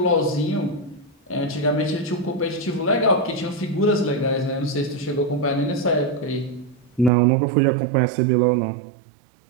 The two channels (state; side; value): drops out; left; at 7.1 s